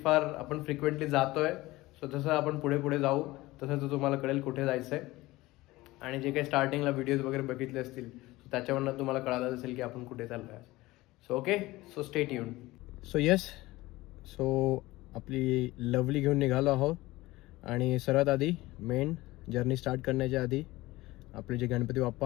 फार आपण फ्रिक्वेंटली जातोय. सो जसं आपण पुढे पुढे जाऊ तसं तुम्हाला कळेल कुठे जायचं आहे. आणि जे काही स्टार्टिंगला व्हिडिओज वगैरे बघितले असतील त्याच्यावरनं तुम्हाला कळालं असेल की आपण कुठे चाललो आहे. So okay, so stay tuned. So yes, so आपली लवली घेऊन निघालो आहोत. आणि सर्वात आधी मेन जर्नी स्टार्ट करण्याच्या आधी आपले जे गणपती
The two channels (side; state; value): right; quieter; 19.2 dB